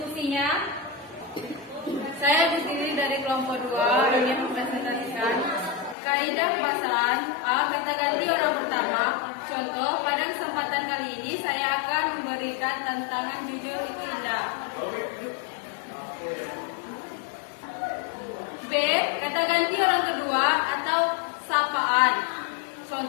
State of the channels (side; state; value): right; drops out; at 6.0 s